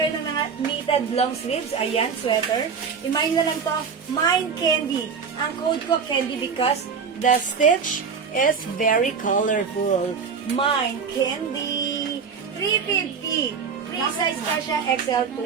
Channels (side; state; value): left; quieter; 6.0 dB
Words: ng mga knitted long sleeves. Ayan, sweater. I-mine na lang to. Mine Candy. Ang code ko Candy because the stitch is very colorful. Mine Candy. 350. Free size kasha XL to